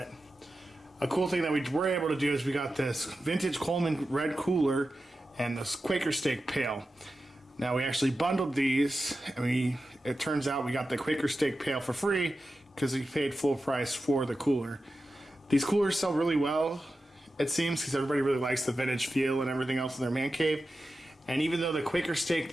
A cool thing that we were able to do is we got this vintage Coleman red cooler and this Quaker steak pail. Now we actually bundled these, and it turns out we got the Quaker steak pail for free because we paid full price for the cooler. These coolers sell really well, it seems, because everybody really likes the vintage feel and everything else in their man cave. And even though the Quaker steak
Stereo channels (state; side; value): normal; both; correlation 0.92